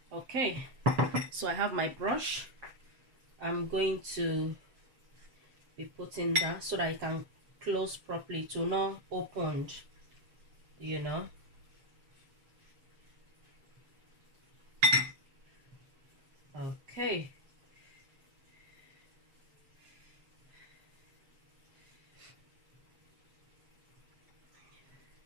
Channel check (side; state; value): left; late; 7.2 ms